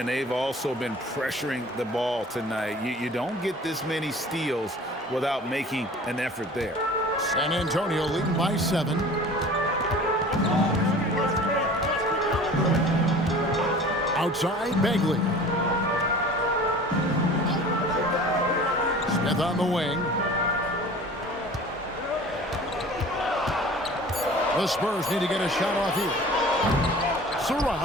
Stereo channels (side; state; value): both; normal; correlation 0.43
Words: they've also been pressuring the ball tonight. You don't get this many steals without making an effort there. San Antonio leading by 7. Outside, Begley. Smith on the wing. The Spurs need to get a shot off here.